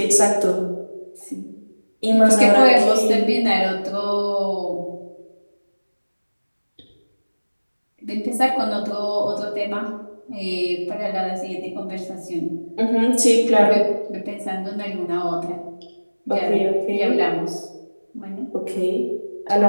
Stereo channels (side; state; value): both; inverted; correlation -1.00